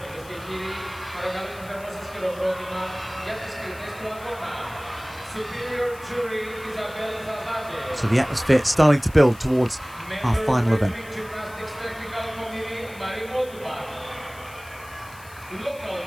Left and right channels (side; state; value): left; noise; hiss, 20 dB below the sound